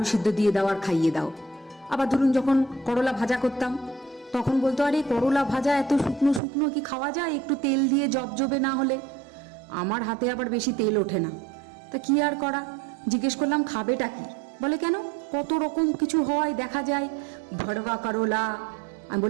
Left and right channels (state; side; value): drops out; left; at 6.4 s